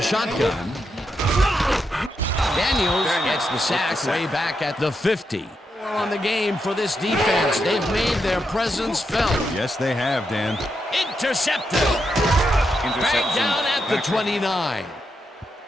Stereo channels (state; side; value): normal; both; correlation 0.83